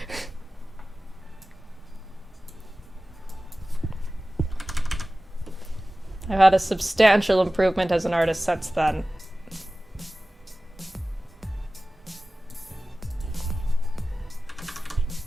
I've had a substantial improvement as an artist since then.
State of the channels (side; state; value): both; normal; correlation 0.96